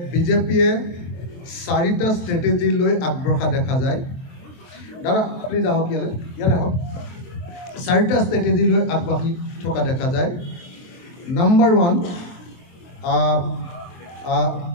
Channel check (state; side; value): late; right; 23 ms